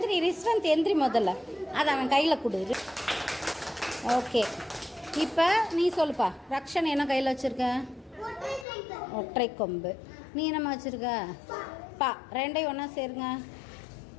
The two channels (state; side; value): drops out; right; at 8.7 s